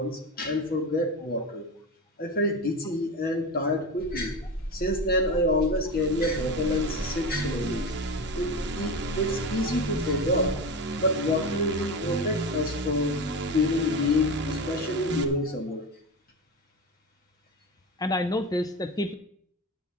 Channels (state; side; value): normal; both; correlation 0.23